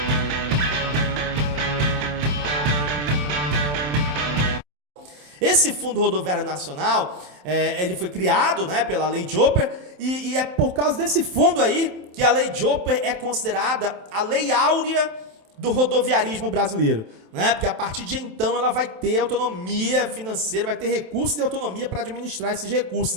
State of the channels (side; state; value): left; late; 27 ms